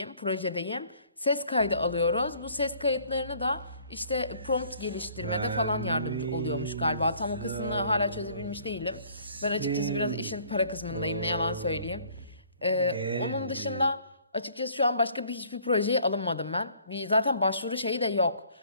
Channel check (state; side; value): inverted; both; correlation -0.57